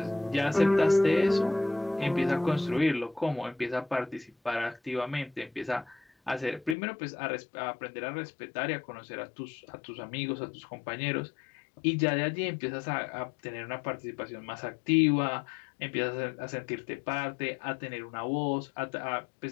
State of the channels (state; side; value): drops out; right; at 6.8 s